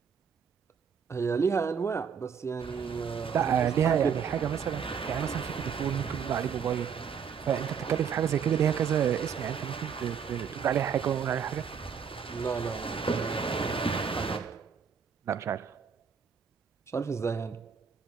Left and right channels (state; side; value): quieter; left; 7.0 dB